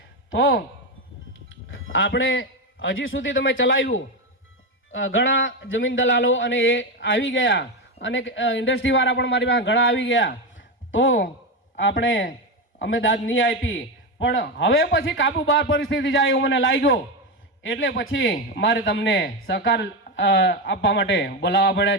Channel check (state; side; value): normal; both; correlation 0.13